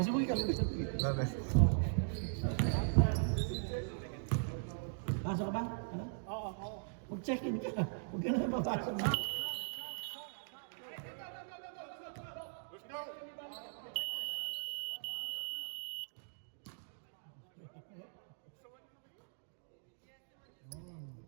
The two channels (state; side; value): silent; left; digital silence